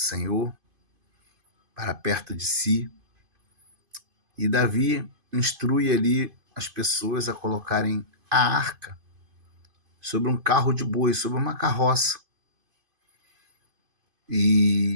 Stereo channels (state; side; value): late; left; 2.5 ms